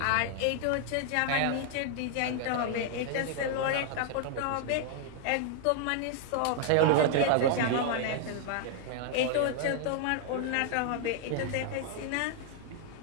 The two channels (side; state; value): both; different; correlation 0.00